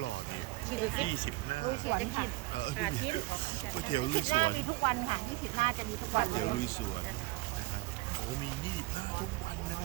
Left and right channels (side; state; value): left; quieter; 20.8 dB